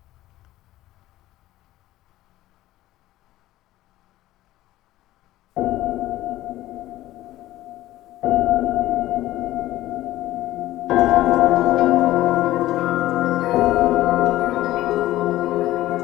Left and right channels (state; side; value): quieter; right; 15.6 dB